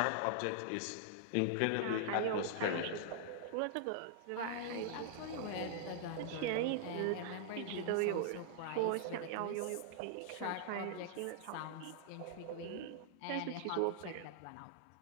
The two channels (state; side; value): different; both; correlation -0.01